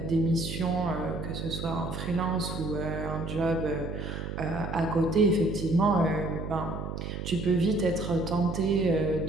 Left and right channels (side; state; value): right; noise; hum, 6 dB below the sound